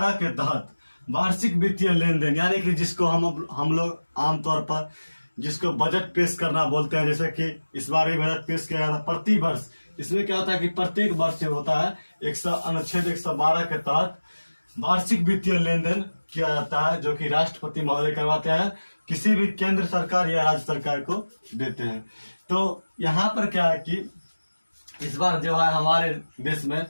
के तहत वार्षिक वित्तीय लेन देन, यानी कि जिसको हम लोग आमतौर पर जिसको बजट पेश करना बोलते हैं, जैसे कि इस बार भी बजट पेश किया गया था प्रति वर्ष। इसमें क्या होता है कि प्रत्येक वर्ष जो होता है अनुच्छेद 112 के तहत वार्षिक वित्तीय लेन देन किया जाता है, जो कि राष्ट्रपति महोदय करवाते हैं, किसी भी केंद्र सरकार या राज्य सरकार को देते हैं। तो यहाँ पर क्या है कि इस बार जो है हमारे देश में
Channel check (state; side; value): inverted; both; correlation -1.00